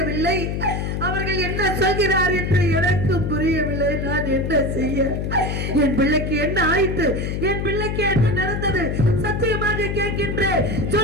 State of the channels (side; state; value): left; noise; hum, 2 dB below the sound